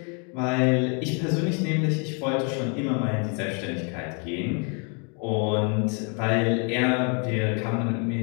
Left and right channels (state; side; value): quieter; right; 37.7 dB